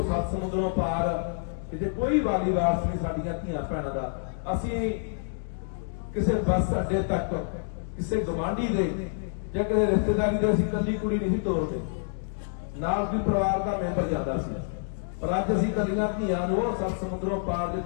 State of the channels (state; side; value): silent; right; digital silence